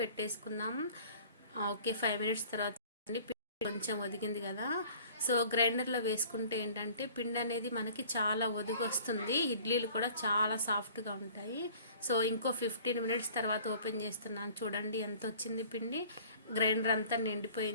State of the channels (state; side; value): inverted; both; correlation -0.49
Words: పెట్టేసుకుందాం. ఓకే, 5 మినిట్స్ తర్వాత పిండి కొంచెం ఒదిగింది కదా. సో గ్రైండర్లో వేసుకుంటే ఏంటంటే పిండి అనేది మనకి చాలా ఒదిగి వస్తుంది. ఇడ్లీలు కూడా చాలా సాఫ్ట్గా ఉంటాయి. సో ఇంకో 15 మినిట్స్ తర్వాత ఓపెన్ చేస్తున్నాను. చూడండి ఎంత వచ్చింది పిండి. గ్రైండర్ అంతా